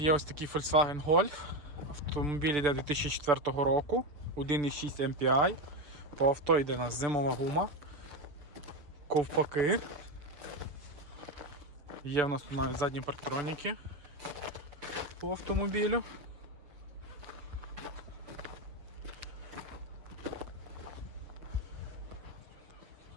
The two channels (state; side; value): late; left; 6.8 ms